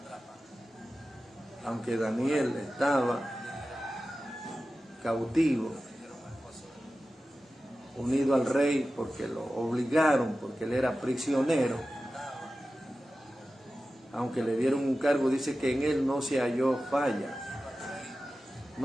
Aunque Daniel estaba cautivo, unido al rey porque lo obligaron, porque él era prisionero, aunque le dieron un cargo, dice que en él no se halló falla,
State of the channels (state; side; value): normal; both; correlation 0.94